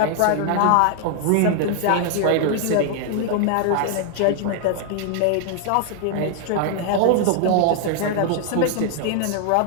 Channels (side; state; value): both; different; correlation 0.00